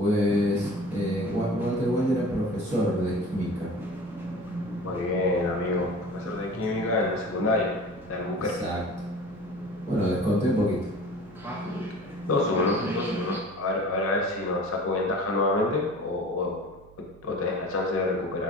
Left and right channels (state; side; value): noise; right; hum, 24 dB below the sound